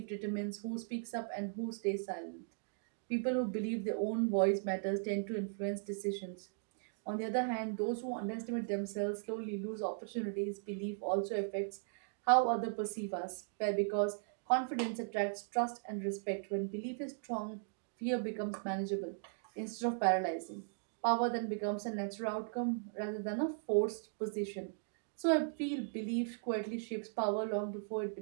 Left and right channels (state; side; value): silent; left; digital silence